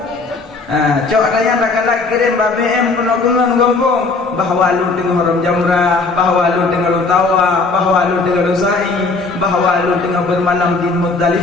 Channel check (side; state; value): right; quieter; 3.9 dB